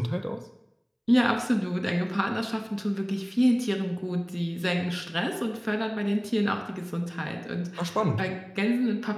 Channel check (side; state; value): both; identical; correlation 1.00